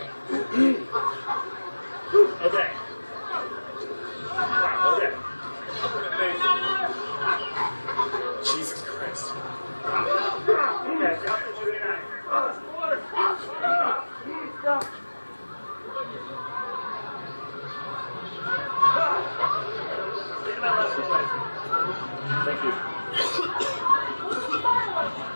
Okay. Wow, okay. Jesus Christ. Okay, drop the 29. Thank you.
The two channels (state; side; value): inverted; both; correlation -1.00